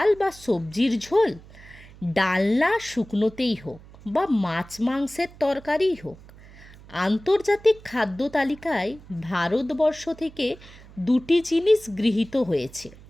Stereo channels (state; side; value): noise; right; hum, 21 dB below the sound